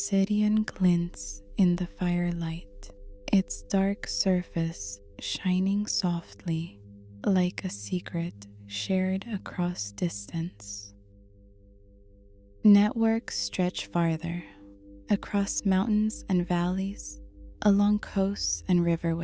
glints in the firelight, its dark surface shining softly like a secret shared across distance. Networks stretch farther, across mountains and valleys, along coasts and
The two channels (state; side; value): identical; both; correlation 1.00